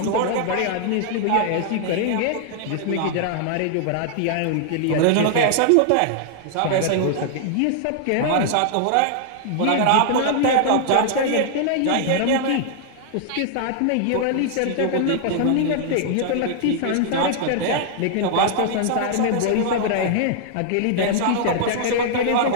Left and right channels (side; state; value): both; different; correlation 0.00